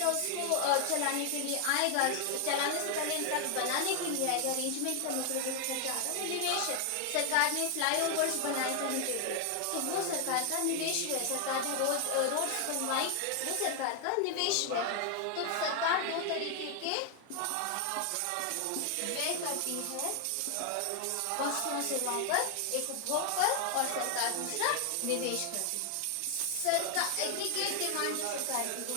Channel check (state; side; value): different; both; correlation 0.00